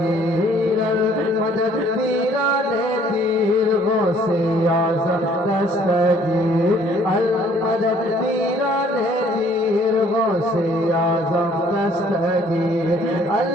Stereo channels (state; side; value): normal; both; correlation 0.59